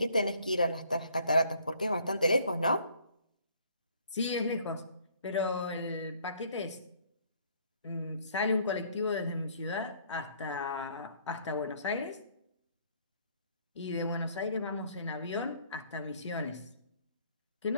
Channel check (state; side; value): inverted; both; correlation -0.61